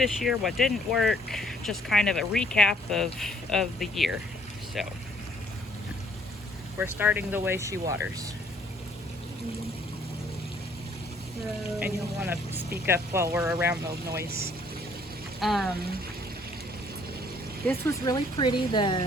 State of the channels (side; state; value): both; normal; correlation 0.62